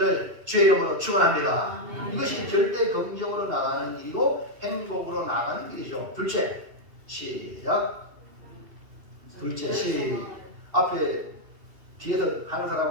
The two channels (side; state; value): left; late; 2.7 ms